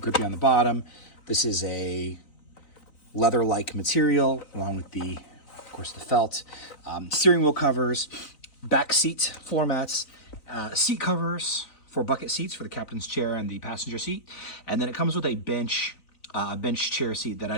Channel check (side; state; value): right; late; 3.9 ms